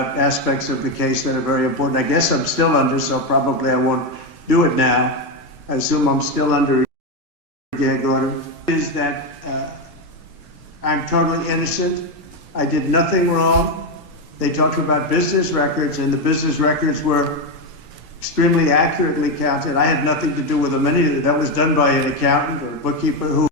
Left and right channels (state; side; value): normal; both; correlation 0.09